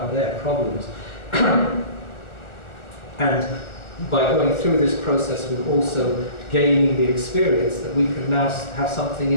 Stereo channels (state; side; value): late; right; 1.4 ms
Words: their problems. And by going through this process, we're also gaining the experience that we can now have something